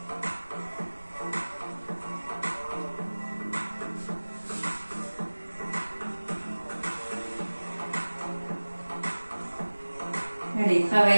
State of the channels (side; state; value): both; inverted; correlation -1.00